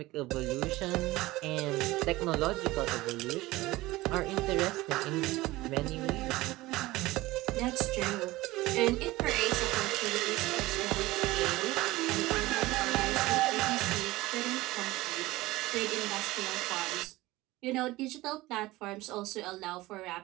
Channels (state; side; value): quieter; left; 19.0 dB